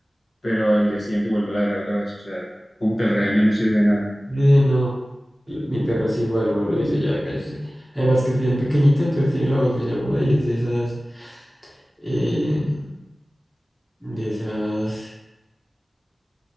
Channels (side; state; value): both; normal; correlation 0.97